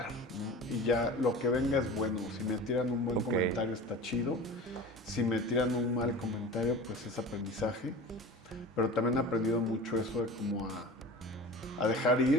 ¿no? Y ya lo que venga es bueno. Si me tiran un buen comentario está chido. Si me tiran un mal comentario, pues es aprendizaje. Pero también he aprendido mucho eso de como a dejar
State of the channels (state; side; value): normal; both; correlation 0.37